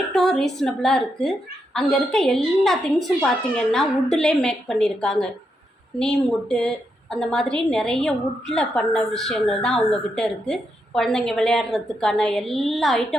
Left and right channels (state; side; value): normal; both; correlation 0.82